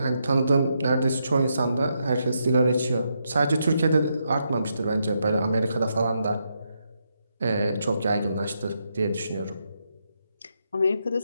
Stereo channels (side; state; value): both; inverted; correlation -0.81